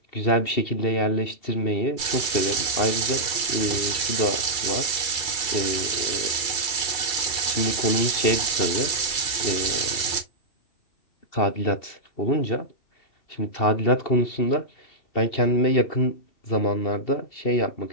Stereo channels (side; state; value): right; late; 2.3 ms